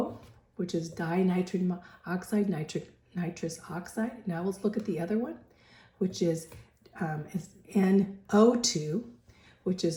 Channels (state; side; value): identical; both; correlation 1.00